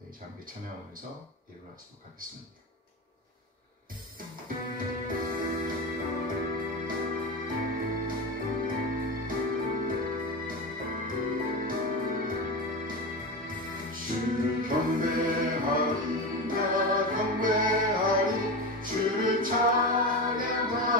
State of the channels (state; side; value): normal; both; correlation 0.21